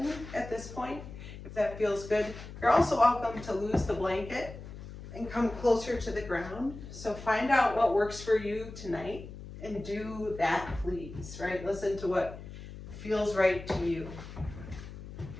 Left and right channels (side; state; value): left; noise; hum, 13 dB below the sound